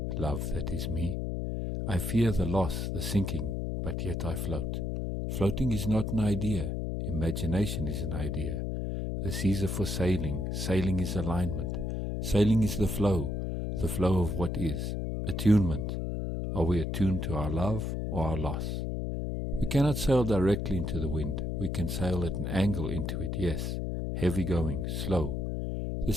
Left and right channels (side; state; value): left; noise; hum, 2 dB below the sound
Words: love that is me? I fear the loss, the sinking, but yet I float. Floating is not an idea, imagination is an idea. The seas are for sailing, sailing is alignment. Sailing is the flow of what is. Attunement. Are we attuned to our love or our loss? We cannot sail directly into the wind. We can sail at an angle into it, yes. Heavy going, slow. The